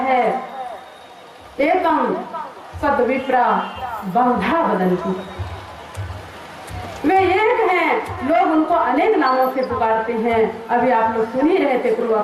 एकम सद्विप्रा बहुधा वदन्ति। वे एक हैं, लोग उनको अनेक नामों से पुकारते हैं। अभी आप लोग सुन ही रहे थे पूर्व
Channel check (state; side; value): identical; both; correlation 1.00